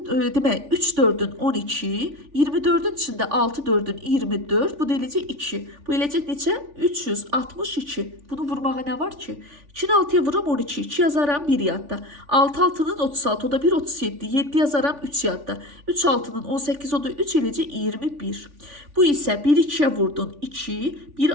demək 3 4-ün 12, 24-ün içində 6 4-ün 24, bu da eləcək 2. Bu eləcək neçə? 362. Bunu vurmağa nə var ki? 2-ni 6-ya vuram 12, 2 yazaram 1 yadda. 6 6-nın 36, o da 1 37, 7 yazaram 3 yadda. 3 6-nın 18, o da 3 eləcək 21. Bu isə 1 2-yə vurdun 2, 1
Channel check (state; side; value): late; left; 3.4 ms